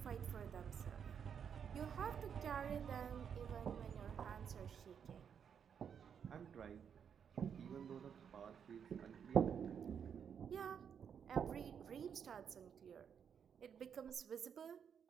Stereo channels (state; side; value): quieter; left; 7.6 dB